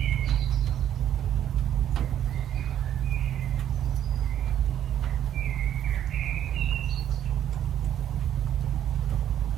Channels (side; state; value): left; quieter; 10.7 dB